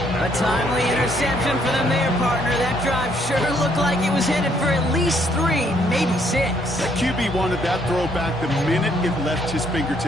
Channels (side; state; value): both; normal; correlation 0.68